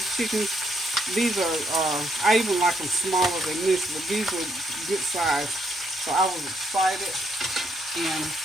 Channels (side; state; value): both; normal; correlation 0.74